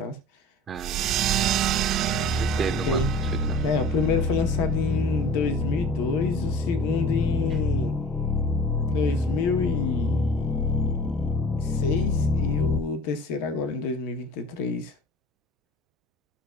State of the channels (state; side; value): normal; both; correlation 0.41